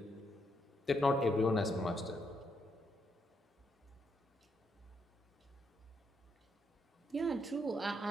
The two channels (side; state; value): both; normal; correlation 0.77